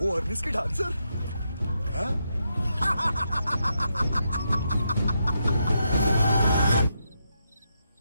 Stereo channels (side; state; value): both; inverted; correlation -0.82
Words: अर्निस की डांसर? हाँ?